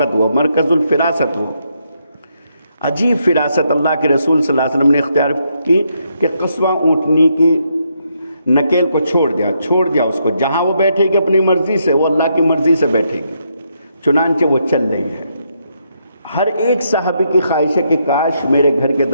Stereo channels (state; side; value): inverted; both; correlation -0.78